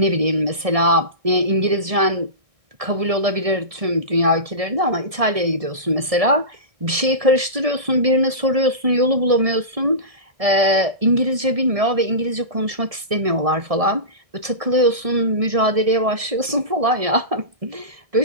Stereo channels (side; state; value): left; late; 1.7 ms